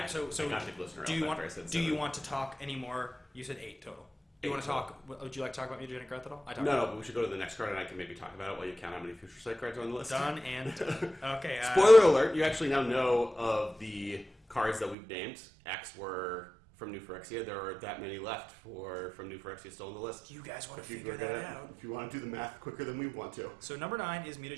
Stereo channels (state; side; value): drops out; left; at 15.0 s